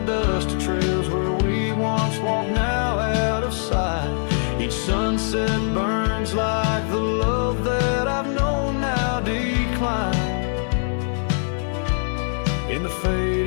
dusty trails where we once walked, now out of sight. Each sunset burns like the love that I've known now decline. In the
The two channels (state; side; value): silent; right; 64 dB below the other